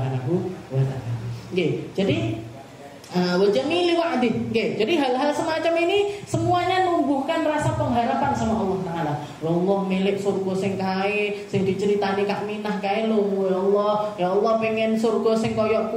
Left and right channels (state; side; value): identical; both; correlation 1.00